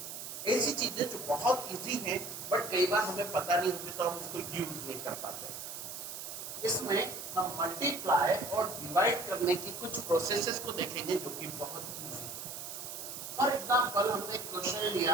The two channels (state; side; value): noise; right; hiss, 8 dB below the sound